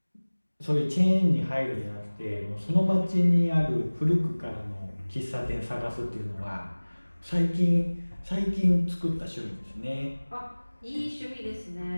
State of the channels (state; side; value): inverted; both; correlation -1.00